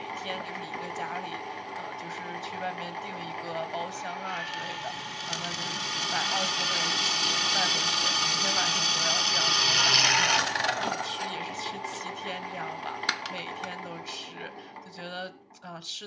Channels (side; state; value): both; identical; correlation 1.00